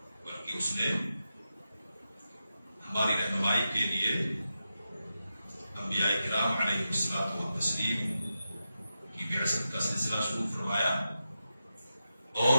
بلکہ اس نے ہماری رہنمائی کے لیے انبیاء کرام علیہ الصلوۃ والتسلیم کی بعثت کا سلسلہ شروع فرمایا اور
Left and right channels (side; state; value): both; inverted; correlation -0.89